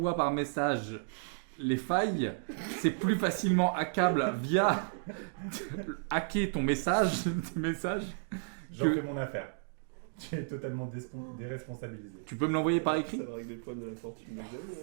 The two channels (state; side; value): silent; left; digital silence